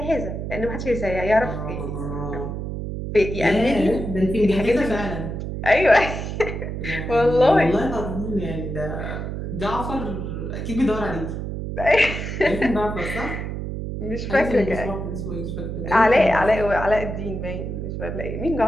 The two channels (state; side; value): noise; right; hum, 5 dB below the sound